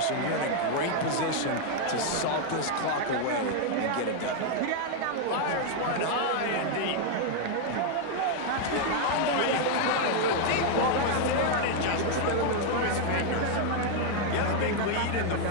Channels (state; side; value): different; both; correlation 0.00